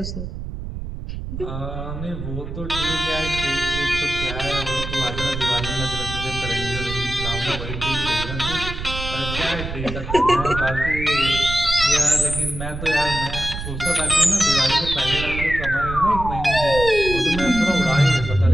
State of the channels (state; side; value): noise; right; rumble, 7 dB below the sound